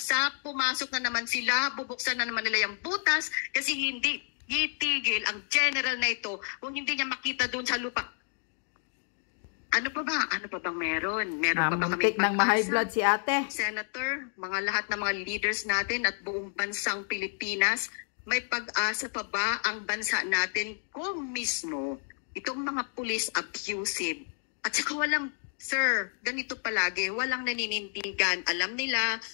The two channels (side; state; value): right; silent; 56 dB below the other